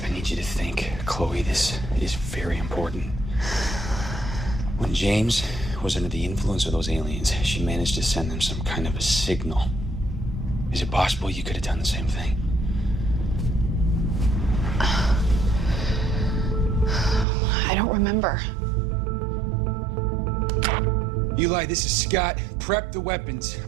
I need you to think, Chloe, this is very important. When James was under the influence of those aliens, she managed to send them some kind of a signal. Is it possible you could have done the same thing? I don't remember. Eli, this is Scott. Prep the weapons.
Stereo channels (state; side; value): drops out; left; at 17.2 s